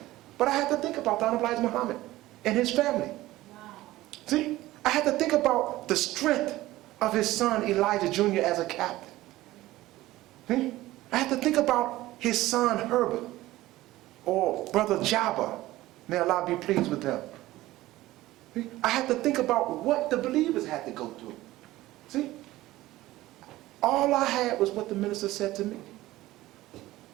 But I had to think about the Honorable Elijah Muhammad and his family. Wow. See, I had to think about the strength of his son Elijah Jr. as a captain. See? I had to think about his son Herbert, or brother Jabba, may Allah be pleased with them. See? I had to think about what the believers had to go through. See, all I had was what the minister said to me.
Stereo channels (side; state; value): left; quieter; 16.9 dB